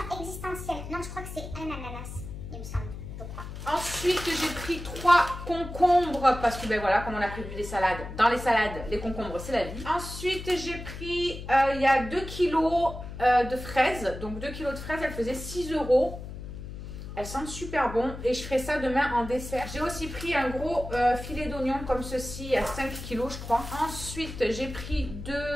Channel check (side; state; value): left; noise; hum, 10 dB below the sound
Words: existentielle. Non, je crois que c'est un ananas, il me semble. Je crois. Ensuite, j'ai pris 3 concombres parce que, ben voilà, comme on a prévu des salades, dans les salades, les concombres, c'est la vie. Ensuite, j'ai pris, il y a 2 kilos de fraises. Donc 2 kilos de fraises, elles faisaient 6 €. Elles sentent super bon et je ferai ça demain en dessert. J'ai aussi pris un gros filet d'oignon comme ceci à 5 kg je crois. Ensuite j'ai pris